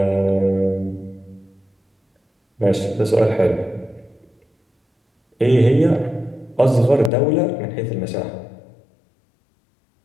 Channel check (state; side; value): drops out; right; at 7.1 s